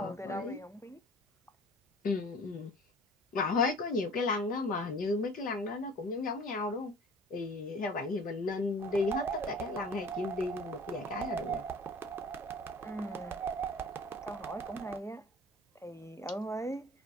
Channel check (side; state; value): both; normal; correlation 0.44